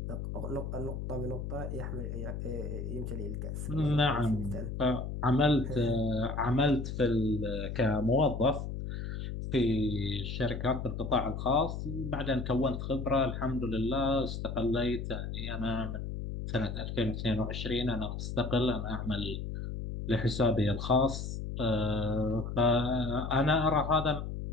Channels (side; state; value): left; noise; hum, 5 dB below the sound